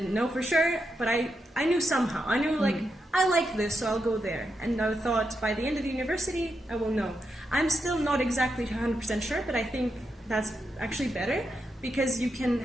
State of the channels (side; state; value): both; normal; correlation 0.85